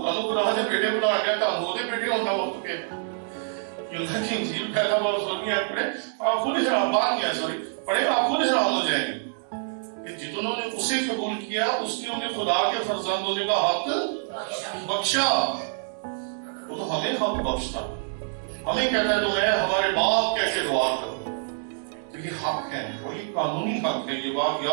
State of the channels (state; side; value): silent; left; digital silence